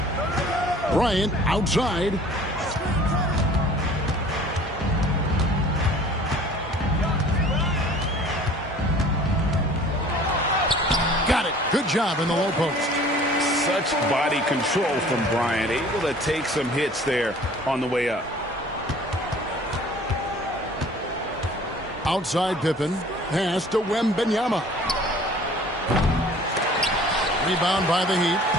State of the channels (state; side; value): normal; both; correlation 0.49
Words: Bryant outside. Got it. Good job in the low post. Such body control from Bryant. Able to take some hits there on the way up. Outside Pippen. Pass to Wembanyama. Rebound by the Heat.